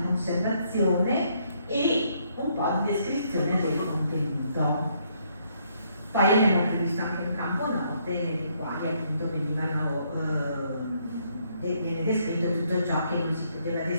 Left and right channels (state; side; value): inverted; both; correlation -0.71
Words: conservazione e un po' di descrizione del contenuto. Poi abbiamo previsto anche un campo note nei quali appunto viene descritto tutto ciò che non si poteva